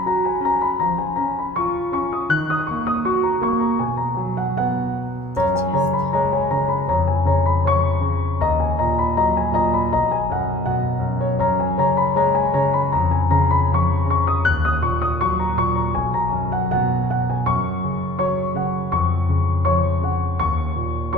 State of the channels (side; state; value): both; normal; correlation 0.51